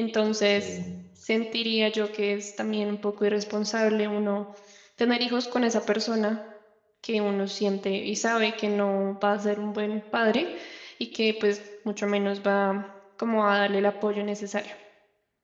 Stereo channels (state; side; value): identical; both; correlation 1.00